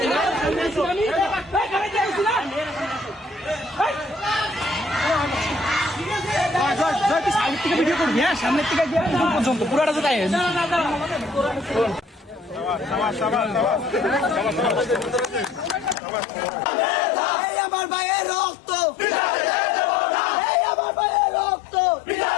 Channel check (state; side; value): drops out; right; at 16.0 s